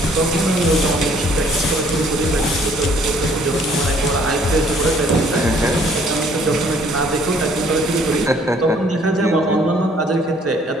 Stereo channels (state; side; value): normal; both; correlation 0.61